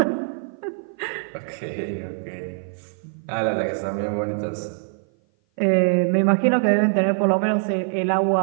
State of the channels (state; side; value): silent; left; 56 dB below the other